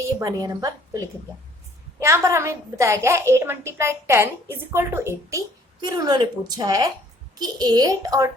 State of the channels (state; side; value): normal; both; correlation 0.58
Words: ये बने नंबर, तो लिख दिया। यहाँ पर हमें बताया गया है 8 × 10 = 80, फिर उन्होंने पूछा है कि 8 और